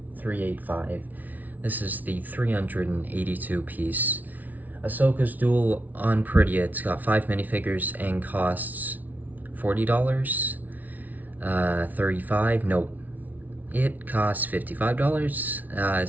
This is the 382 piece Ahsoka's Duel on Perida. It's got 5 minifigures and costs $40, $35, nope. It costs $55,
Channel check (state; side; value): late; left; 0.078 ms